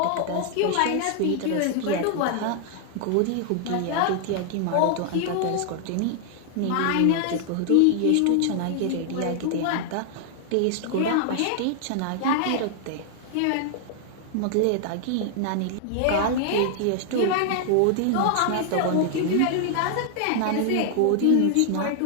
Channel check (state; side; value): different; both; correlation 0.00